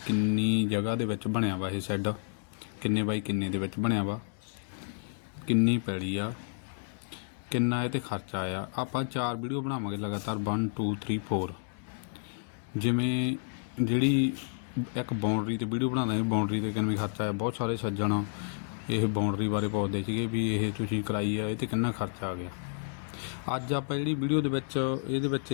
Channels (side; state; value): right; silent; digital silence